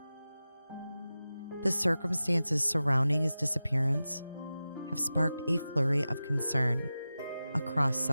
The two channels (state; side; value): inverted; both; correlation -0.94